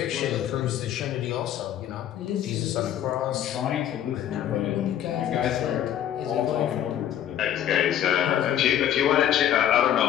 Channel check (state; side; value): quieter; right; 10.9 dB